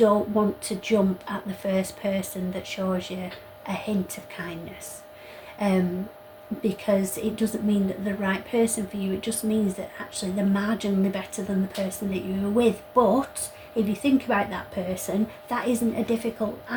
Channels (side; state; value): both; identical; correlation 1.00